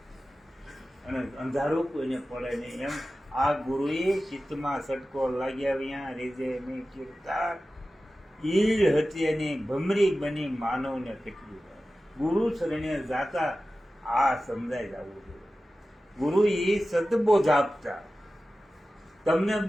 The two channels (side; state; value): both; normal; correlation 0.95